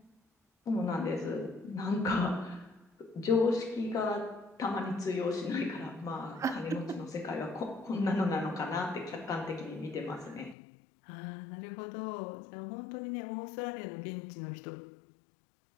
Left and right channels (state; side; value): drops out; right; at 10.6 s